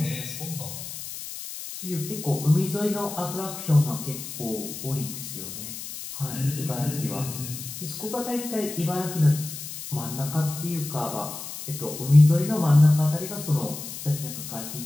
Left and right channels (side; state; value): left; noise; hiss, 9 dB below the sound